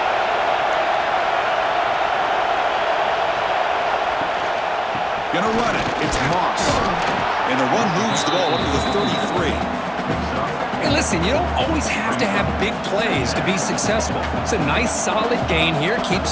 Gonna run it. It's Moss. And the run moves the ball up to the 33. Hey, listen, you don't always have to have big plays to be successful. It's a nice, solid gain here.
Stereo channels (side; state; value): both; identical; correlation 1.00